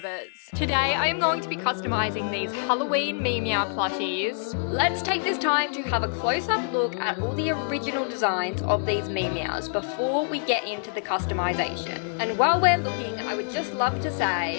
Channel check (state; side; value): silent; right; digital silence